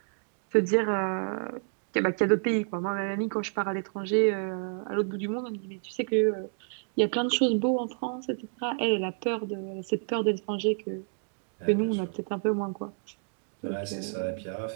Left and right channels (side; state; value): left; silent; digital silence